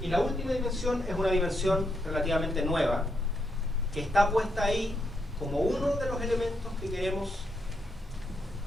la última dimensión es una dimensión relativamente nueva, que está puesta ahí como uno de los elementos que queremos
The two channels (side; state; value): both; normal; correlation 0.80